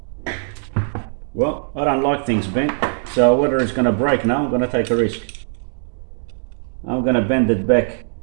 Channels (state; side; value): silent; left; digital silence